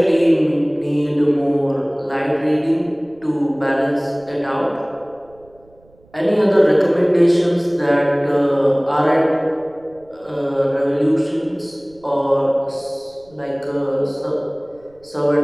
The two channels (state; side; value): noise; right; rumble, 30 dB below the sound